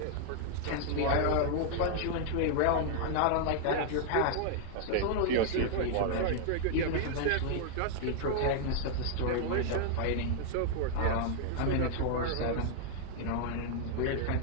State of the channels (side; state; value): both; different; correlation -0.01